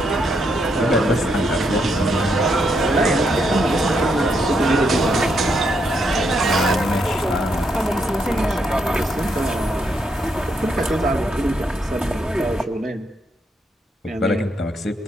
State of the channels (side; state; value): both; normal; correlation 0.78